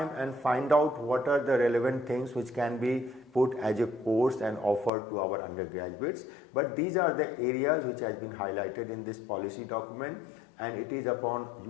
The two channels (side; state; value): right; drops out; at 4.9 s